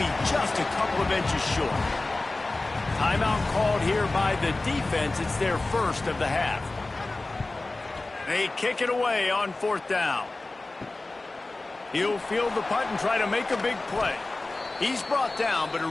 just a couple of inches short. Timeout called here by the defense. It's their first of the half. They kick it away on fourth down. He'll field the punt and try to make a big play. He's brought down, but a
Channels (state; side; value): quieter; right; 3.1 dB